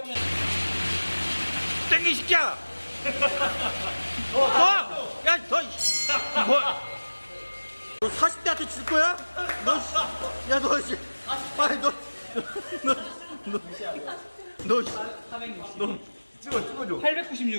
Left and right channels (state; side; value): inverted; both; correlation -1.00